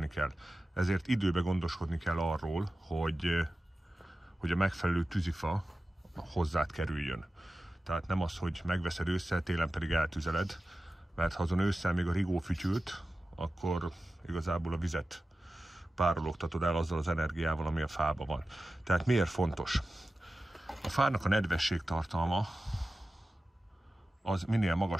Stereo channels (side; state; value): both; normal; correlation 0.94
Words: kell. Ezért időben gondoskodni kell arról, hogy a megfelelő tűzifa hozzád kerüljön. Tehát nem az, hogy megveszed ősszel, télen pedig eltüzeled, mert ha azon ősszel még a rigó fütyült, akkor igazából a vizet párologtatod el azzal az energiával, ami a fában van. Tehát miért fontos? A fának a nedvesség tartalma az minél